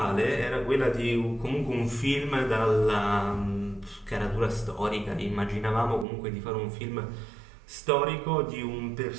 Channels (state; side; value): drops out; left; at 6.1 s